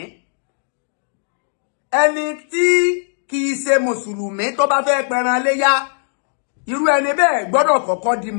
ẹni tí kìí ṣe mùsùlùmí tó bá fẹ́ pẹran léyá irú ẹni bẹ́ẹ̀ gbọ́dọ̀ kọ́kọ́ di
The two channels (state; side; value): silent; right; digital silence